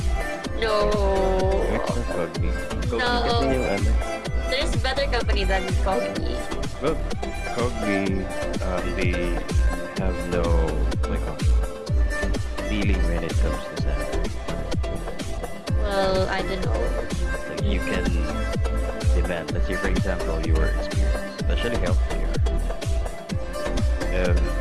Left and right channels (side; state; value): both; identical; correlation 1.00